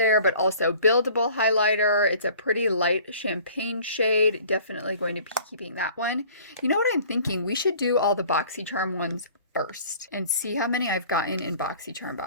but also buildable highlighter. It's a pretty light champagne shade. Definitely going to be keeping that one. You know what I'm thinking? We should do all the BoxyCharm ones first and see how many I've gotten in BoxyCharm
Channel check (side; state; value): both; inverted; correlation -0.50